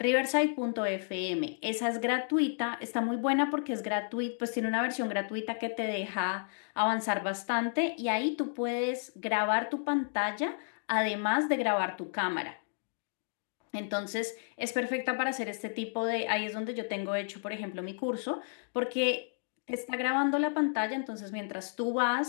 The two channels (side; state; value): right; silent; digital silence